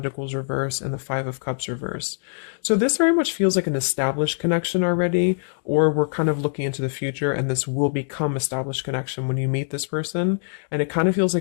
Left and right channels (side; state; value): right; silent; digital silence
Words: reverse, and the Five of Cups reverse. So this very much feels like an established connection already, or we're kind of looking into the future and this will become established connection when you meet this person. And it kind of feels